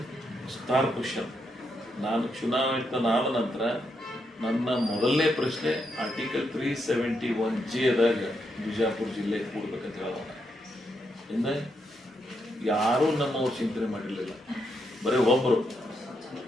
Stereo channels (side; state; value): both; normal; correlation 0.80